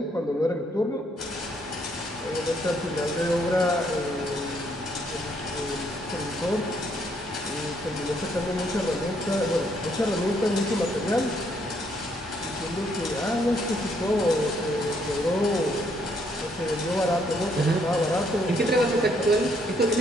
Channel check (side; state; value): both; normal; correlation 0.70